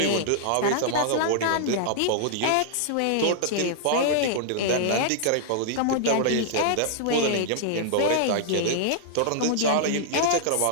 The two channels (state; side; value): different; both; correlation -0.01